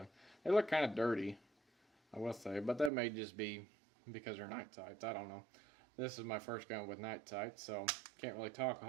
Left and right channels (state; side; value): drops out; left; at 2.9 s